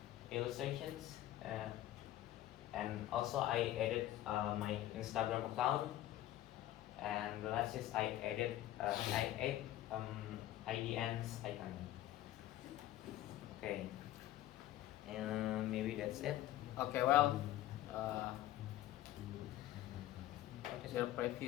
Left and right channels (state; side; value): quieter; right; 14.0 dB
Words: illustrations, and also I added my Instagram account, and the last is I added I add IDN's icon. Okay, and maybe that's it. Okay, well, what is your